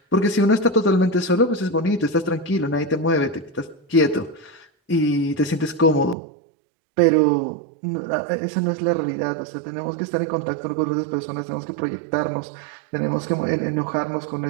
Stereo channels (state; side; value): drops out; left; at 6.2 s